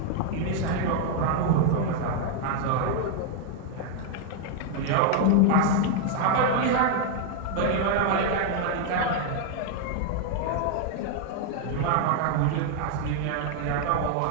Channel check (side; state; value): both; different; correlation 0.00